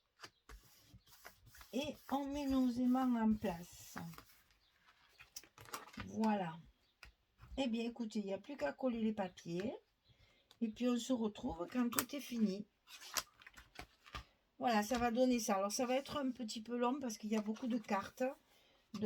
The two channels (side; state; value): both; identical; correlation 1.00